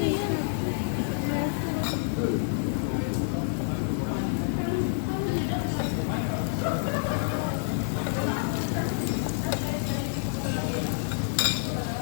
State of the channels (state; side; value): silent; right; digital silence